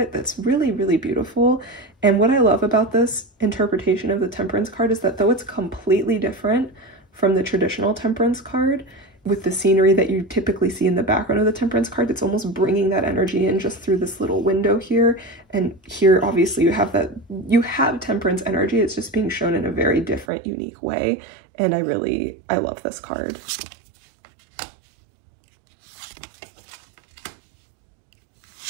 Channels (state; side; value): drops out; left; at 20.2 s